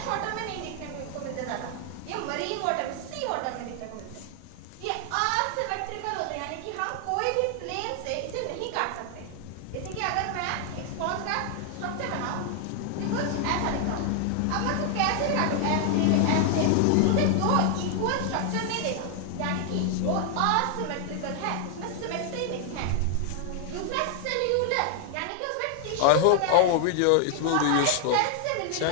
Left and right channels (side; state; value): both; different; correlation 0.00